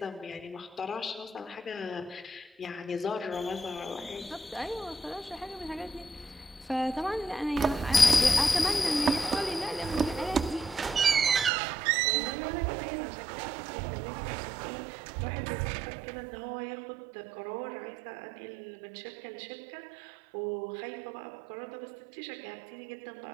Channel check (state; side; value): drops out; left; at 11.5 s